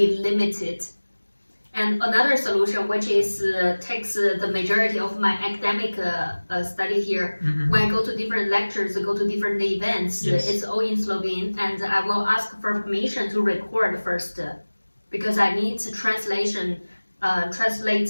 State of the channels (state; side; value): inverted; both; correlation -1.00